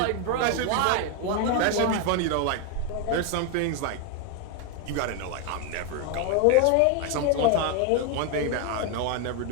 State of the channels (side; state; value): both; different; correlation 0.01